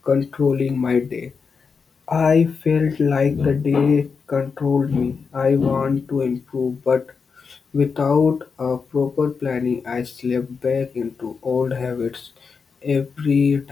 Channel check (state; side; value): quieter; right; 5.4 dB